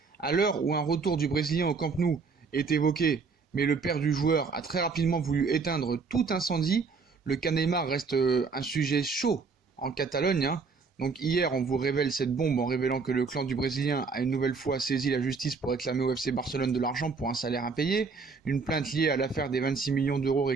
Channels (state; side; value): quieter; left; 4.8 dB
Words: à l'heure où un retour du Brésilien au Camp Nou est évoqué, mais le père du joueur a très rapidement voulu éteindre tout incendie. Le cas Neymar reste un sujet chaud en Catalogne, hein. Donc hier, on vous révèle cette bombe en révélant que le clan du Brésilien a une nouvelle fois saisi la justice pour réclamer au FC Barcelone de l'argent pour un salaire impayé. Une plainte liée à l'affaire des 26 millions d'euros